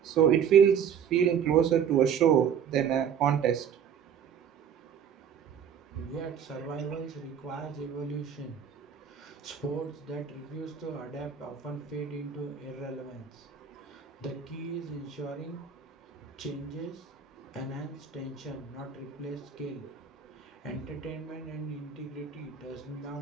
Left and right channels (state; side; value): quieter; left; 7.8 dB